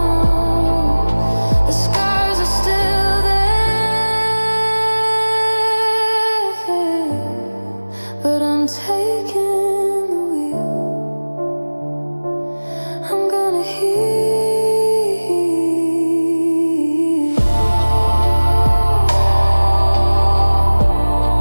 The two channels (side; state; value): both; inverted; correlation -1.00